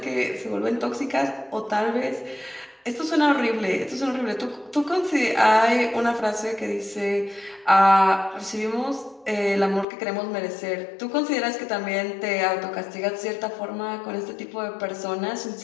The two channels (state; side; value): drops out; right; at 9.9 s